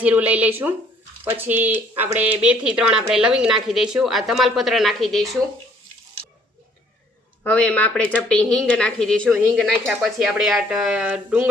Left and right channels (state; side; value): normal; both; correlation 0.61